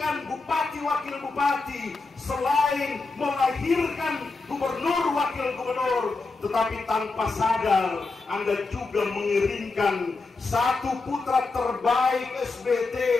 bupati wakil bupati, selain melahirkan gubernur wakil gubernur, tetapi tanpa sadar Anda juga mengirimkan satu putra terbaik SBT,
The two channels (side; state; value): right; quieter; 3.9 dB